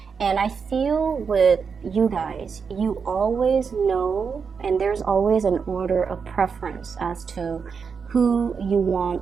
And I feel with you guys, you always know, and there's always an order of preference as to who you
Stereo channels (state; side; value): quieter; left; 5.9 dB